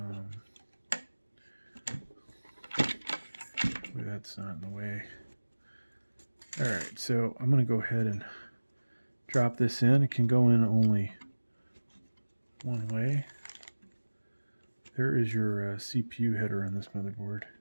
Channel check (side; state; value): both; inverted; correlation -1.00